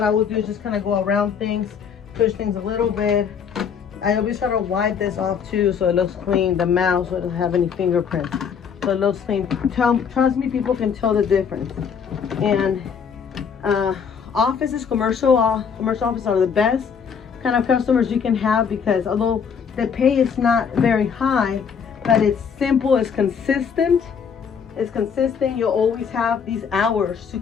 I will do is just kind of go around things, push things a little bit. I always try to wipe this off too, so it looks clean. The mouse, so it doesn't have any fingerprints. So it looks clean. Trust me, people can tell the difference. And offices, commercial offices are the best kind of customers you can have, because although the pay is not very high, but it's simple, it's consistent. You'll always have these hours to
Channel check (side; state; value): right; quieter; 6.8 dB